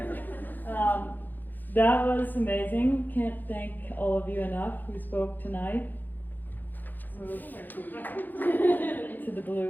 That was amazing. Can't thank all of you enough who spoke tonight. Move to the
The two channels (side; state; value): right; late; 0.086 ms